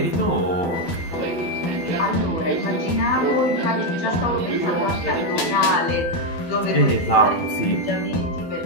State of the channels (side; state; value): right; late; 12 ms